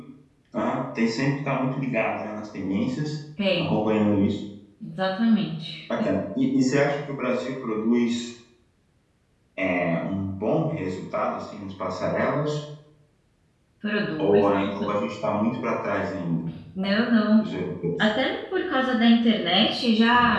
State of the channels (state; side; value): identical; both; correlation 1.00